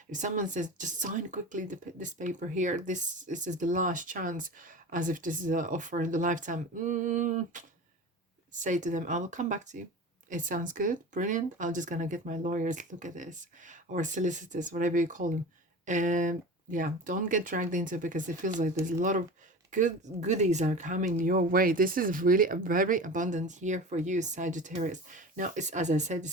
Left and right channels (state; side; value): normal; both; correlation 0.33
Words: if someone says just sign quickly this paper here, this is the last chance, as if this is an offer in the lifetime, say to them, I will come back to you. It sounds good, brilliant. I'm just gonna get my lawyers to look at this, or solicitors, whatever you call them. And yeah, don't get dragged into it, because it feels like there's a lot of goodies are coming your way. This is really a very abundant year for you, Sagittarius. Now, it's, as I said, it